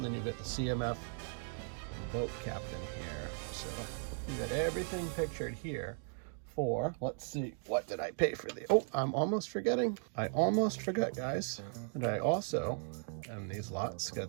then you get the CMF boat captain here. So you got everything pictured here for, let's see, what did I pay for the, oh, I'm almost forgetting. I almost forgot, guys. And I also, in these lots,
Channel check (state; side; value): silent; left; 53 dB below the other